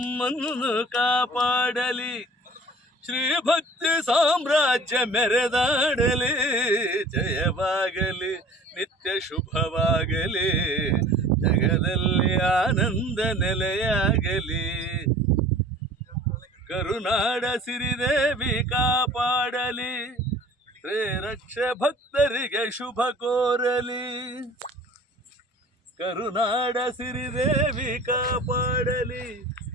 ಕಾಪಾಡಲಿ. ಶ್ರೀ ಭಕ್ತಿ ಸಾಮ್ರಾಜ್ಯ ಮೆರೆದಾಡಲಿ. ಜಯವಾಗಲಿ ನಿತ್ಯ ಶುಭವಾಗಲಿ, ಜಗದಲ್ಲಿ ಆನಂದ ನೆಲೆಯಾಗಲಿ. ಕರುನಾಡ ಸಿರಿದೇವಿ ಕಾಪಾಡಲಿ, ಶ್ರೀರಕ್ಷ ಭಕ್ತರಿಗೆ ಶುಭ ಕೋರಲಿ. ಕರುನಾಡ ಸಿರಿದೇವಿ ಕಾಪಾಡಲಿ,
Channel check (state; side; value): normal; both; correlation 0.47